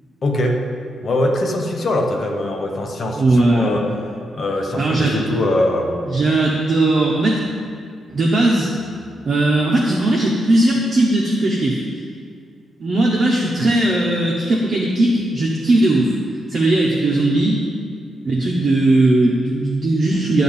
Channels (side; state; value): both; normal; correlation 0.84